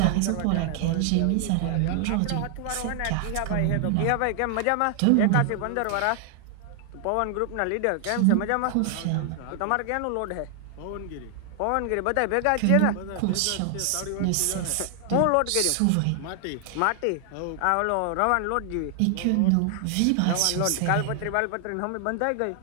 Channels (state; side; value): different; both; correlation 0.00